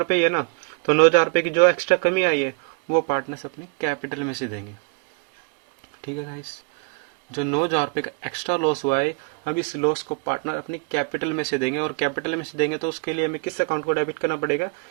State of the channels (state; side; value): quieter; left; 33.6 dB